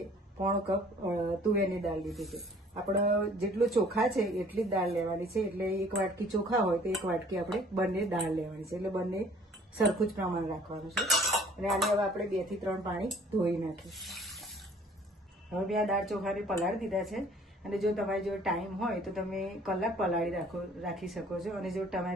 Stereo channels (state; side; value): normal; both; correlation 0.54